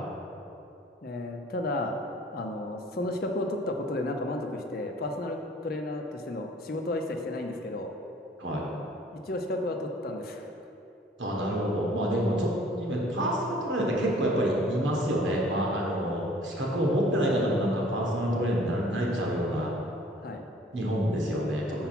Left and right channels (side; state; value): both; normal; correlation 0.54